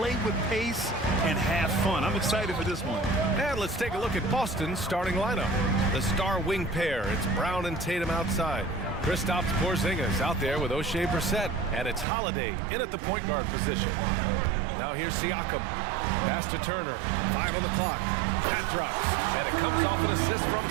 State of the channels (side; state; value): left; drops out; at 12.1 s